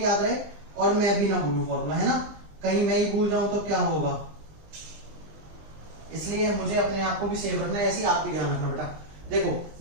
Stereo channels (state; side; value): late; left; 20 ms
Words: याद रहे और मैं भी ना भूलूं फॉर्मूला, है ना। कहीं मैं ही भूल जाऊं तो क्या होगा, इसलिए मुझे अपने आप को भी सेव रखना है, ऐसे ही आप भी ध्यान रखना बेटा। देखो